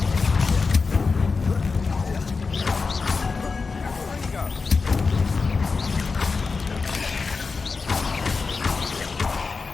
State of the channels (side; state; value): right; quieter; 4.5 dB